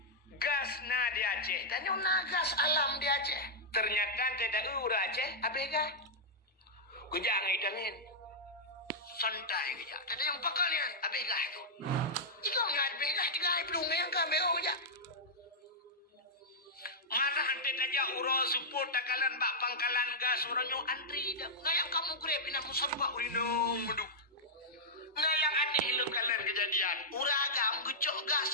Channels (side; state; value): both; normal; correlation -0.08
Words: gas na di Aceh. Tanya na gas alam di Aceh. Ternyata tidak ura Aceh, abega. Kejak ngidangin. Santai kejak. Tadi yang pakalian, abega itu. Ikaw nga abega, tiga belum yang kami aja. Mana hante aja uro support takalan bak pangkalan gas orangnya antri dah. Ngayang kamu grab ina musabba urinong menduk. Ngayang aneh lu kalian kejadian. Uragam gecok gas